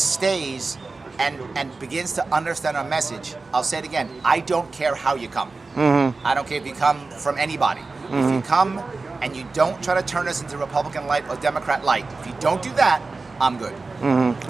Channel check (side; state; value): left; quieter; 3.8 dB